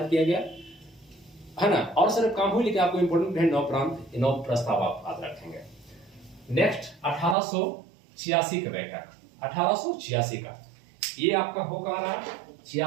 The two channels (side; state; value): left; drops out; at 7.4 s